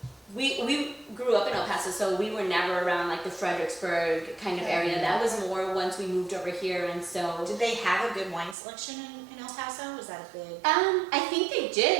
we grew up in El Paso, so we were never around like the Fredericksburg kind of area. That was more once we moved over here, and so. Did they have a good wine selection in El Paso? Was that a big? I think they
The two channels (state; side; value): drops out; left; at 8.6 s